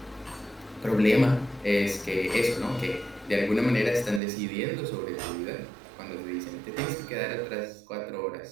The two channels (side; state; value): left; drops out; at 4.2 s